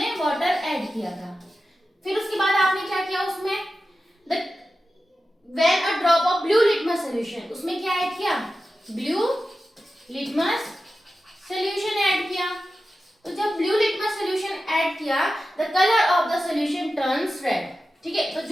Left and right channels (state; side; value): normal; both; correlation 0.93